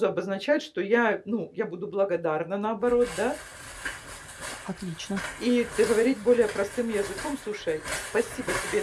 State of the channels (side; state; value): both; identical; correlation 1.00